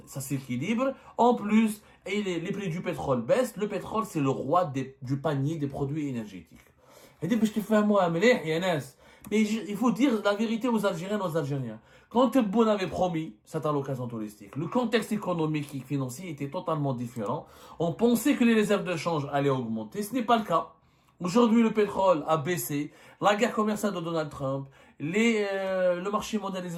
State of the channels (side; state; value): both; identical; correlation 1.00